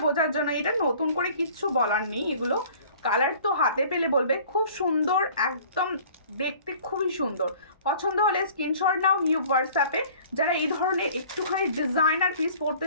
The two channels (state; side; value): inverted; both; correlation -0.50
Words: বোঝার জন্য এটা নতুন করে কিচ্ছু বলার নেই এগুলো কালার তো হাতে পেলে বলবে খুব সুন্দর একদম দেখতে খুবই সুন্দর পছন্দ হলে স্ক্রিনশট নাও নিউ হোয়াটসঅ্যাপে যারা এই ধরনের একটুখানি ডিজাইনার পিস পড়তে